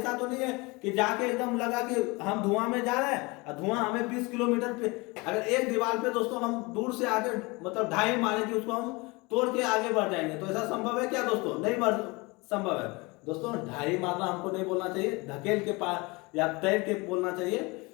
तो नहीं है कि जाके एकदम लगा कि हम धुआं में जा रहे हैं और धुआं हमें 20 किलोमीटर पे, अगर एक दीवार पे दोस्तों हम दूर से आगे मतलब ढाई मारे कि उसको हम तोड़ के आगे बढ़ जाएंगे, तो ऐसा संभव है क्या दोस्तों? नहीं संभव है दोस्तों। ढाई मारना हमको नहीं बोलना चाहिए, धकेल के पार या तैर के बोलना चाहिए।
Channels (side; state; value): right; quieter; 25.5 dB